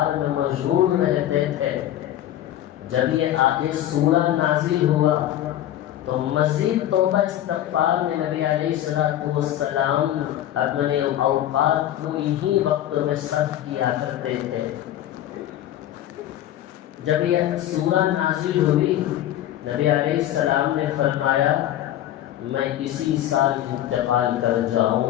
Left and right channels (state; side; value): quieter; right; 12.6 dB